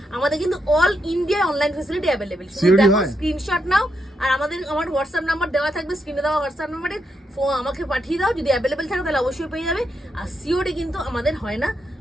আমাদের কিন্তু all India online facility available. COD দেখো হয়? স্ক্রিনশট নাও, আর আমার হোয়াটসঅ্যাপ নাম্বার দেওয়া থাকবে স্ক্রিনে, দেওয়া হোয়াটসঅ্যাপ নাম্বারে আমাকে পাঠিয়ে দাও, যদি অ্যাভেলেবেল থাকে তাহলে অবশ্যই পেয়ে যাবে। আর সিওডি কিন্তু আমাদের হয় না,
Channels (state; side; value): normal; both; correlation 0.81